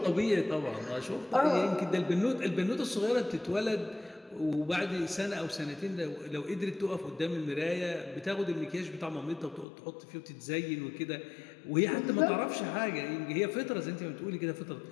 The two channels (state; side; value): drops out; right; at 9.7 s